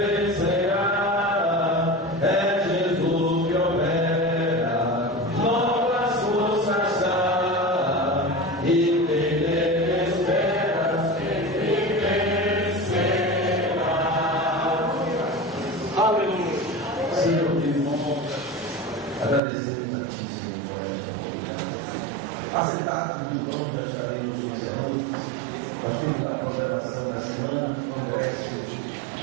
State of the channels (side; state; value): left; drops out; at 19.4 s